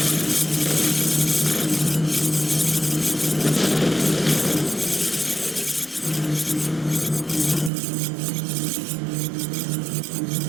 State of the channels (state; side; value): drops out; left; at 7.7 s